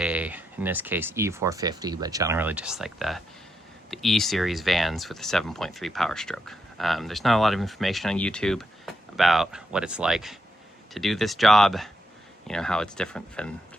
this case, E450, but generally just like the E series vans with a 7.3 Powerstroke. There's not a lot of information on YouTube about what it's like to do this job, you know, how it's different than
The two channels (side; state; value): both; normal; correlation 0.82